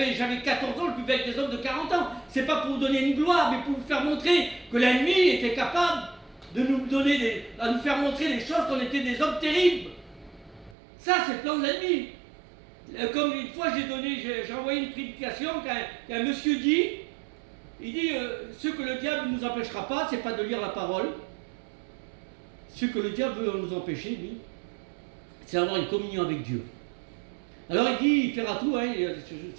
14 ans, je buvais avec des hommes de 40 ans. C'est pas pour vous donner une gloire, mais pour vous faire montrer que la nuit était capable de nous donner à nous faire montrer des choses qu'on était des hommes terribles. Ça, c'est le plan de l'ennemi. Comme une fois j'ai envoyé une prédication qu'un monsieur dit, il dit ce que le diable ne nous empêchera pas, c'est pas de lire la parole. Ce que le diable veut nous empêcher, lui, c'est d'avoir une communion avec Dieu. Alors il dit, il fera tout,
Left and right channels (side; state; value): left; drops out; at 10.8 s